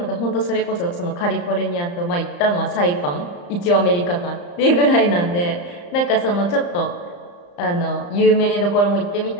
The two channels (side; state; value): right; late; 34 ms